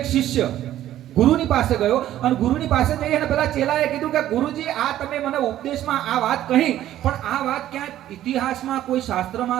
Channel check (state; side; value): quieter; left; 12.8 dB